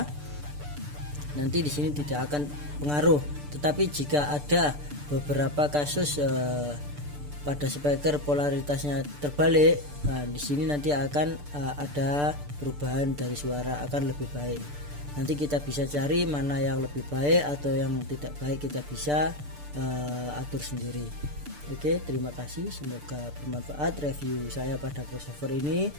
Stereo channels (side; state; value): left; late; 6.8 ms